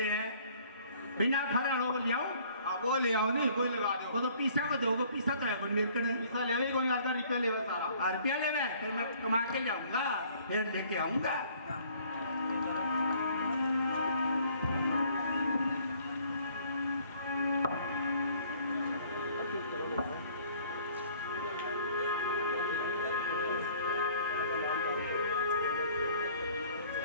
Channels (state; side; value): inverted; both; correlation -0.57